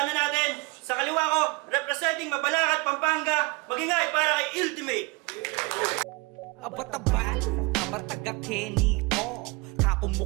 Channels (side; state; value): left; quieter; 26.0 dB